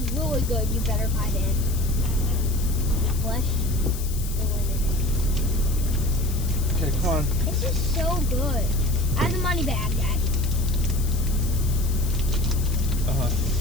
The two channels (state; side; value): noise; left; hiss, 12 dB below the sound